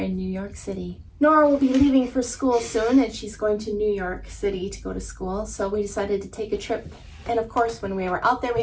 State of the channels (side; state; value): both; identical; correlation 1.00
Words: New York City. Nora will be leaving for school soon, and she's going to New York City to go to school, so we decided to take a trip. And of course, when we were out there, we